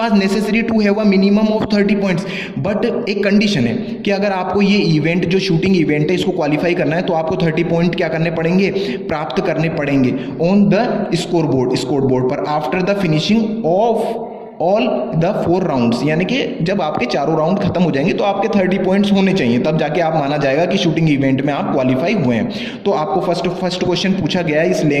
necessary to have a minimum of 30 points. But एक कंडीशन है कि अगर आपको ये इवेंट जो शूटिंग इवेंट है इसको क्वालिफाई करना है तो आपको 30 पॉइंट क्या करने पड़ेंगे, प्राप्त करने पड़ेंगे ऑन द स्कोर बोर्ड पर after the finishing of all the 4 rounds. यानी कि जब आपके चारों राउंड खत्म हो जाएंगे तो आपके 30 पॉइंट्स होने चाहिए, तब जाके आप माना जाएगा कि शूटिंग इवेंट में आप क्वालिफाई हुए हैं। तो आपको फर्स्ट क्वेश्चन पूछा गया है इस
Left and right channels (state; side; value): identical; both; correlation 1.00